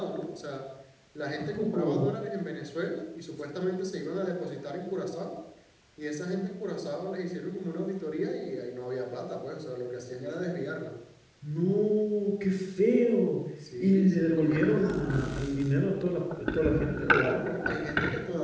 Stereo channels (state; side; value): identical; both; correlation 1.00